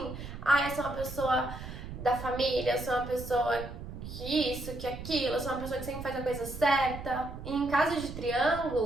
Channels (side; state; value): right; noise; rumble, 10 dB below the sound